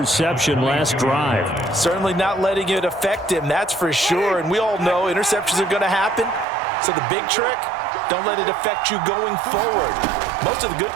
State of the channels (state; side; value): drops out; left; at 6.5 s